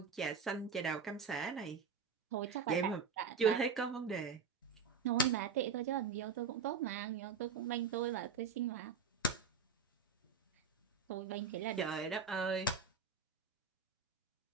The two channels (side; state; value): left; quieter; 5.6 dB